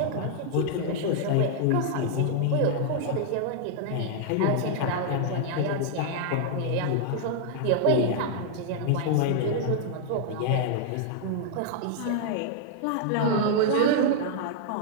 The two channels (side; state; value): both; different; correlation 0.00